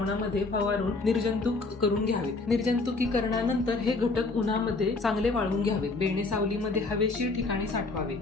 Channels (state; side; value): quieter; right; 3.6 dB